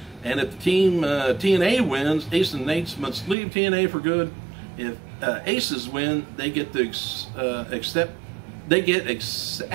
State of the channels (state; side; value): drops out; left; at 3.4 s